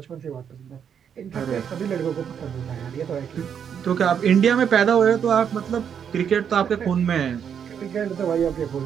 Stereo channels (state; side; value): quieter; left; 7.9 dB